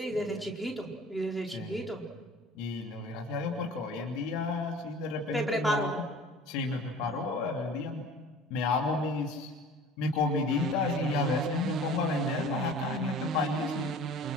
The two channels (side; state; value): both; normal; correlation 0.44